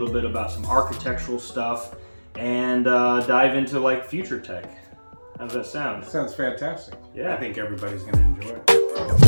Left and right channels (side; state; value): both; inverted; correlation -1.00